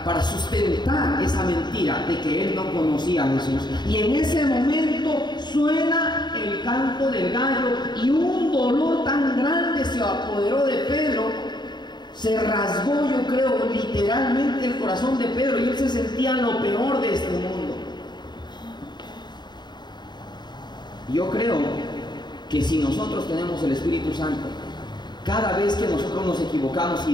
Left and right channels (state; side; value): late; right; 0.21 ms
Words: sustentar esa mentira de que él no conocía a Jesús. Y en ese momento suena el canto del gallo, y un dolor tan grande se apoderó de Pedro, se rasgó, yo creo, literalmente el corazón de Pedro, y él se sentía lo peor de este mundo. Yo creo que si nosotros tenemos el Espíritu Santo, cada vez que nosotros nos equivocamos